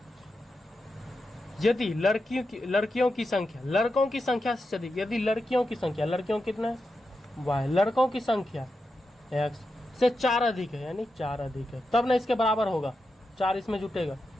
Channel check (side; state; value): both; normal; correlation 0.88